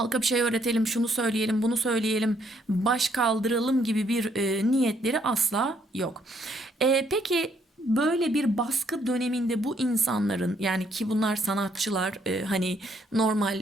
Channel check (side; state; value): both; normal; correlation 0.69